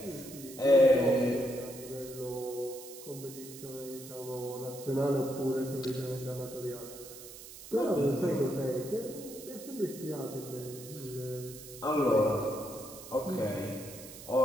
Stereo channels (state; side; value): noise; right; hiss, 15 dB below the sound